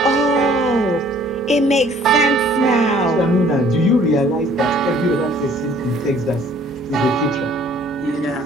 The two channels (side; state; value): both; normal; correlation 0.57